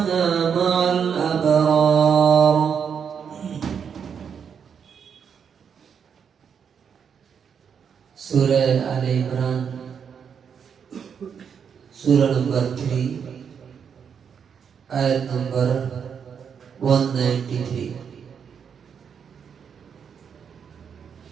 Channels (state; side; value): quieter; left; 7.1 dB